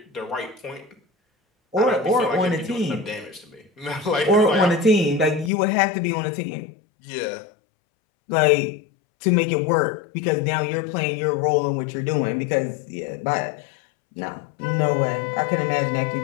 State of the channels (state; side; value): drops out; right; at 5.5 s